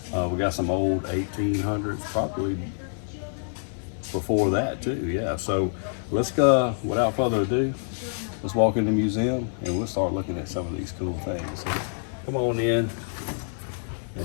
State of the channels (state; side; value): silent; right; 61 dB below the other